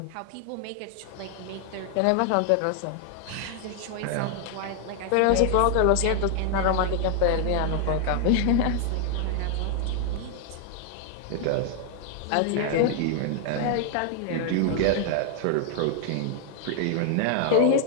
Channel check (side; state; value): both; different; correlation 0.00